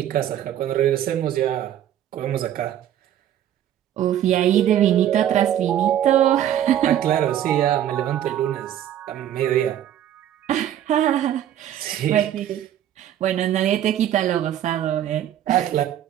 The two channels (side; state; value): left; quieter; 11.1 dB